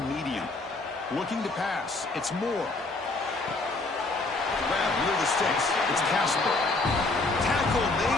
medium. Looking to pass. It's Moore. Grab near the sticks. It's Casper. Tackle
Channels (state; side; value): quieter; right; 3.3 dB